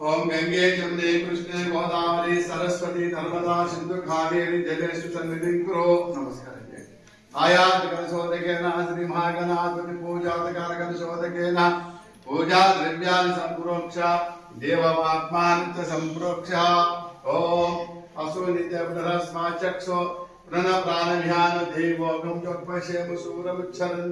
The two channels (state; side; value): identical; both; correlation 1.00